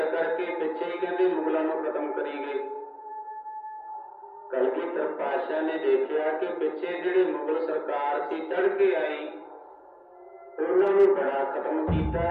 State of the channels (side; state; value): both; identical; correlation 1.00